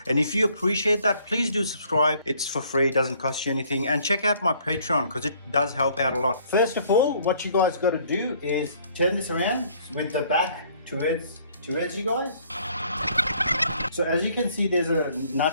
And if you appreciate that, please do subscribe. It's for free, it doesn't cost you anything. And check out my Patreon because it does help out a lot. First of all, what you guys got to do is turn this around with the back towards you guys. So as you can see, there's a nut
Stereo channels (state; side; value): inverted; both; correlation -0.61